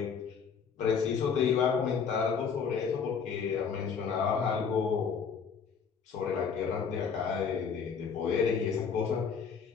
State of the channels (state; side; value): quieter; right; 6.4 dB